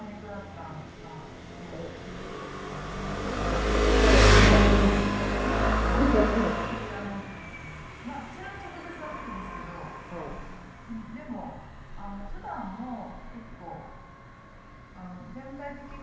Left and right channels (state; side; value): identical; both; correlation 1.00